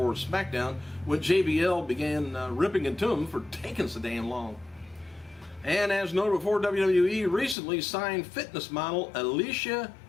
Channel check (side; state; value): right; drops out; at 7.6 s